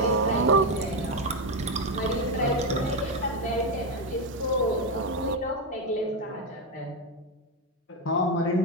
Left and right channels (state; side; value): normal; both; correlation 0.08